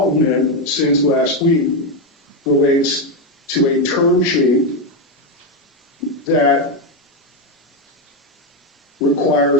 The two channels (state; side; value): normal; both; correlation 0.07